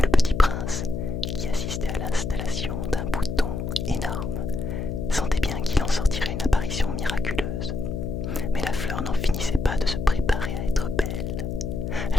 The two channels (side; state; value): left; noise; hum, 3 dB below the sound